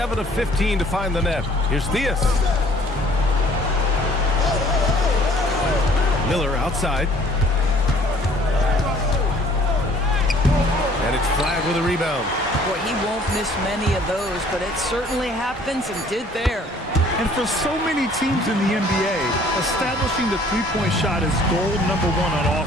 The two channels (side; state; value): both; normal; correlation 0.56